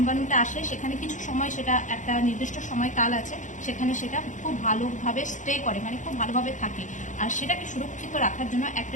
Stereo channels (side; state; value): right; late; 0.36 ms